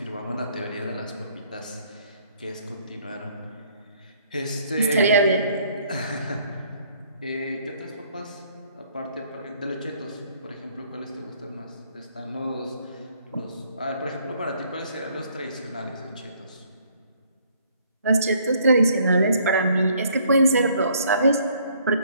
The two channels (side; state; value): both; inverted; correlation -0.63